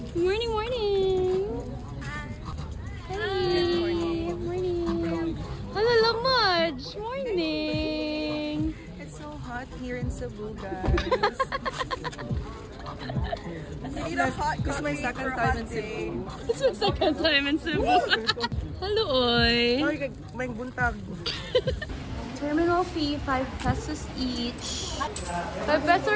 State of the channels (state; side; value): identical; both; correlation 1.00